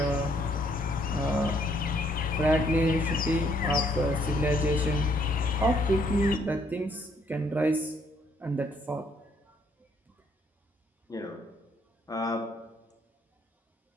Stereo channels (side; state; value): both; normal; correlation 0.68